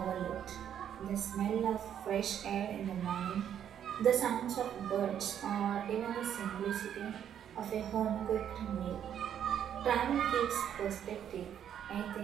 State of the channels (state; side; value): quieter; left; 9.4 dB